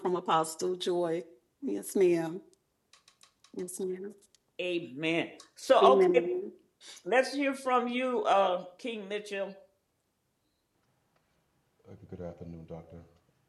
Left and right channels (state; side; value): identical; both; correlation 1.00